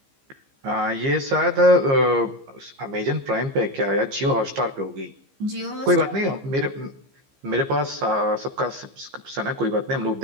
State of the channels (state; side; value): late; left; 15 ms